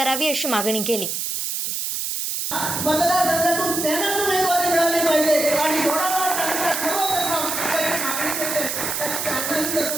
अशी मागणी केली। मतदारसंघातून त्यांना उमेदवारी मिळाली पाहिजे आणि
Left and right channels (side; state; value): right; noise; hiss, 2 dB below the sound